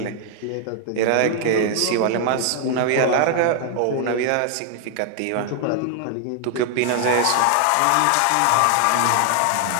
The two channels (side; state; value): both; different; correlation 0.00